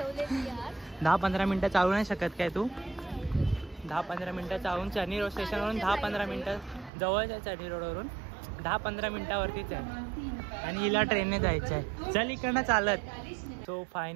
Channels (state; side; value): drops out; left; at 6.9 s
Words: यार. 10-15 मिनटं चालू नाही शकत काय तू? 10-15 मिनटं चालून चर्नी रोड स्टेशनवरून 10-15 मिनटं जवळच आहे. चर्नी रोडवरून 10-15 मिनटावरतीच आहे आणि हिला ट्रेनने जायचं आहे. चल इकडनं चालत. सो